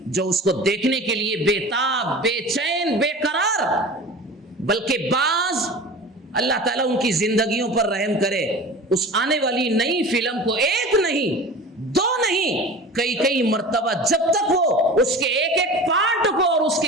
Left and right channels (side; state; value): both; normal; correlation 0.36